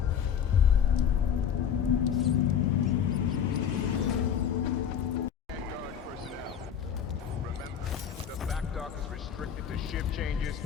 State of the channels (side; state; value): right; quieter; 8.3 dB